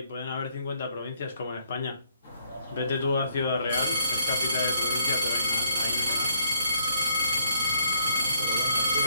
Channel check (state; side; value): inverted; both; correlation -0.67